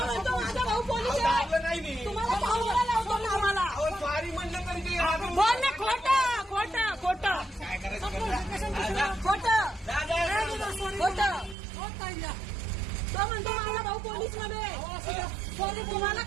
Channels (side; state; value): left; drops out; at 11.6 s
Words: भाऊ पोलीस आहे. तुम्हाला पाहुणा लावतो ना आम्हाला. स्वारी म्हणलं तरी बोल ना. खोटं. तो म्हणतो माझा भाऊ पोलीस मध्ये. तुम्हाला